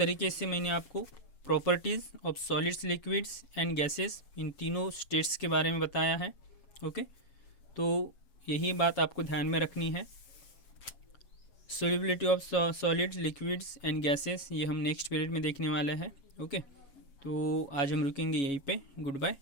से मैंने आपको properties of solids, liquids and gases, इन तीनों स्टेट्स के बारे में बताया है। ओके, तो यही बात आपको ध्यान में रखनी है। Solubility of solids, liquids and gases ये हम नेक्स्ट पीरियड में देखने वाले हैं। ओके, तो आज हम रुकेंगे यहीं पे। Good bye,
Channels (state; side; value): late; right; 7.2 ms